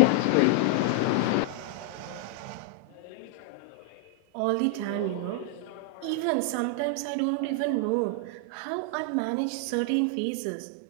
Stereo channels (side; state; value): both; different; correlation 0.00